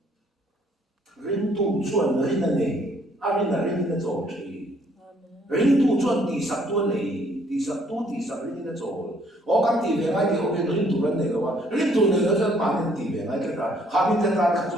rin tu chuan rin na nei a rin na rin na zo chi rin tu chuan ti sak tu nei ti sak rin na zo o kan ti ve nga ti o rin tu ran nei lo wa rin tu nei lo chuan ma rin ti ve nga ka ha min ta ta ka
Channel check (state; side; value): normal; both; correlation 0.64